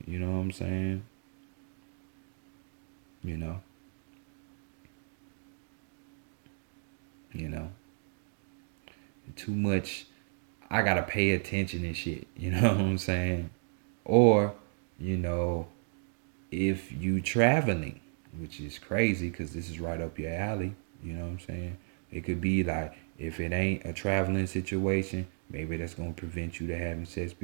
You know what I'm saying? You know. You know. Too much. I gotta pay attention and shit. You know what I'm saying? Or, if you traveling, which is crazy because this is right up your alley. You know what I'm saying? It could be like, if it ain't a traveling situation, maybe that's gonna prevent you to having sex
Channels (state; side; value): silent; left; digital silence